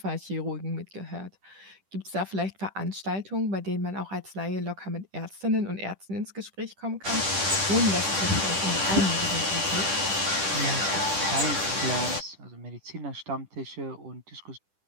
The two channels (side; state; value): left; late; 10 ms